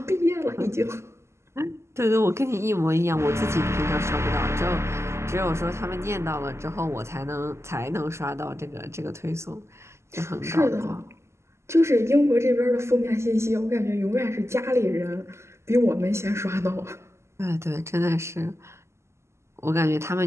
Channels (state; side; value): late; left; 0.13 ms